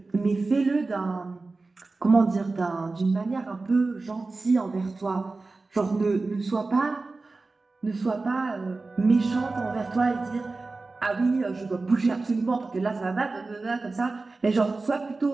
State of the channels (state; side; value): quieter; left; 3.6 dB